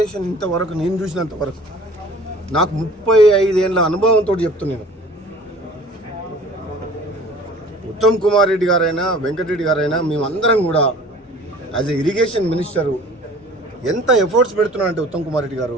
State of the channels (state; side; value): normal; both; correlation 0.48